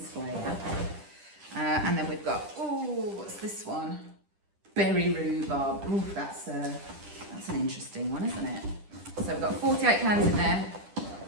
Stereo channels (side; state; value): left; late; 10 ms